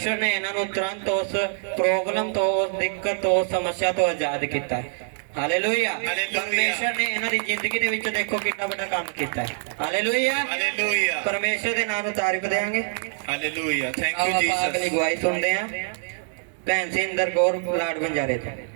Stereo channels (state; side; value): silent; left; digital silence